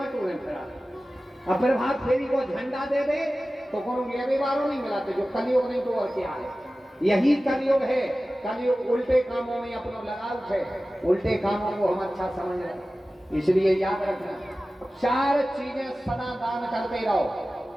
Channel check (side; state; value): both; normal; correlation 0.96